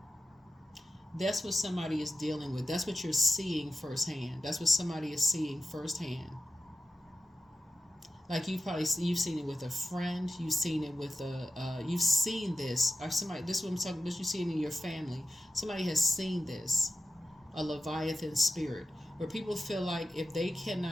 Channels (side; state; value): both; normal; correlation 0.92